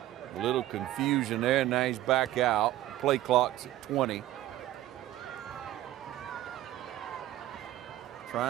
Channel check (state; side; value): quieter; left; 14.4 dB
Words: A little confusion there, now he's back out. Play clock's at 20.